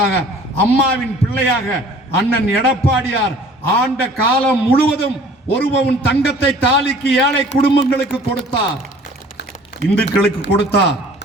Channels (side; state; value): both; normal; correlation 0.50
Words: அம்மாவின் பிள்ளையாக அண்ணன் எடப்பாடியார் ஆண்ட காலம் முழுவதும் 1 பவுன் தங்கத்தை தாலிக்கு ஏழை குடும்பங்களுக்கு கொடுத்தார். இந்துக்களுக்கு கொடுத்தார்,